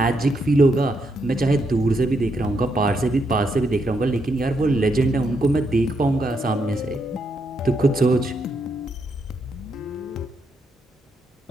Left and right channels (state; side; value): normal; both; correlation 0.79